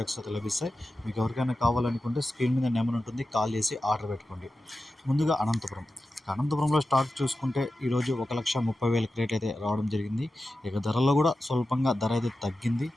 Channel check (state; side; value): normal; both; correlation 0.93